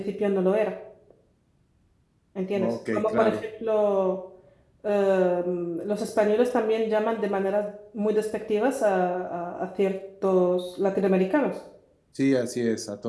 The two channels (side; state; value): both; identical; correlation 1.00